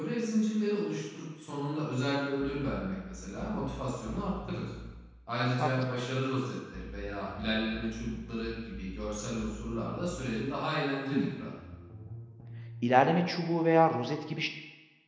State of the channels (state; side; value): identical; both; correlation 1.00